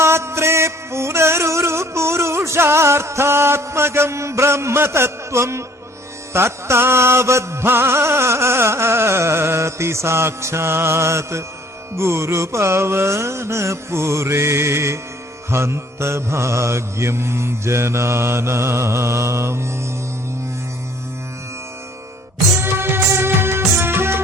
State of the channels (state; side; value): normal; both; correlation 0.57